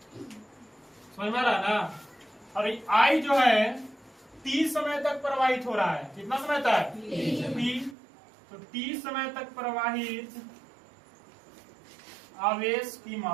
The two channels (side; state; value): left; drops out; at 8.0 s